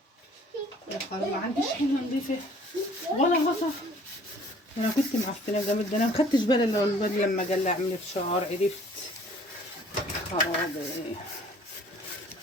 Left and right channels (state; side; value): normal; both; correlation 0.55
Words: يا خلاص ما عنديش حله نضيفه ولا غطا. انا كنت معفنه جامد، ده انا ما خدتش بالي الا لما جه يعمل فشار عرفت. خرابي،